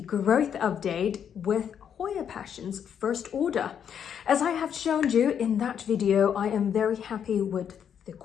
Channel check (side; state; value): right; quieter; 8.3 dB